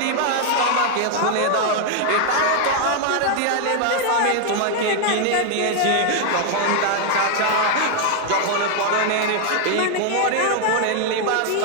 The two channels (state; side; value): different; both; correlation 0.00